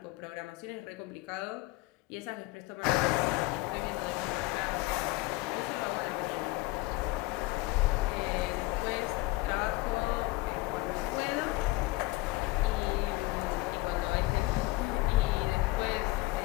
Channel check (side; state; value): right; quieter; 21.0 dB